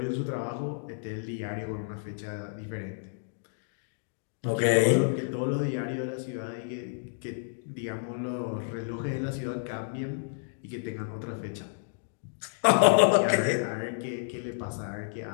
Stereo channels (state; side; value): silent; right; digital silence